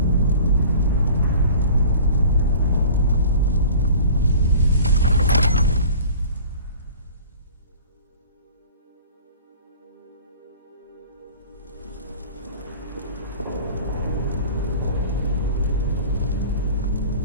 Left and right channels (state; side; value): inverted; both; correlation -0.43